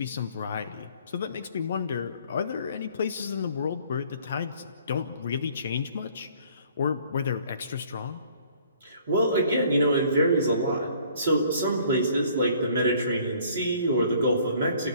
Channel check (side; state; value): both; inverted; correlation -0.57